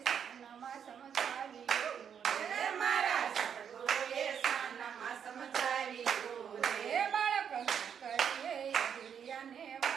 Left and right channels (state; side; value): quieter; left; 7.9 dB